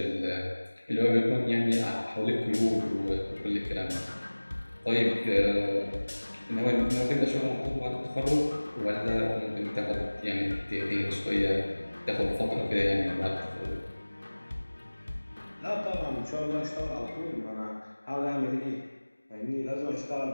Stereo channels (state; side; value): inverted; both; correlation -1.00